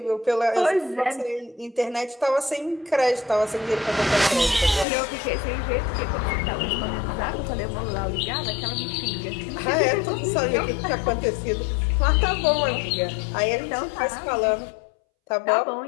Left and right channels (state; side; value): drops out; right; at 4.9 s